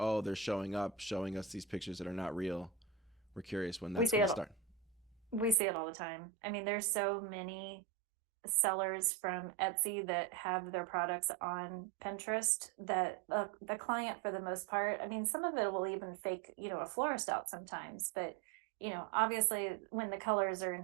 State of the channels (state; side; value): drops out; left; at 5.6 s